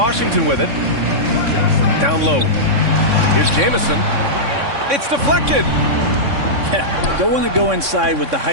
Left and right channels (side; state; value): left; late; 3.6 ms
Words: with it. Down low. Here's Jamison. It's deflected. Yeah, don't want to go inside with the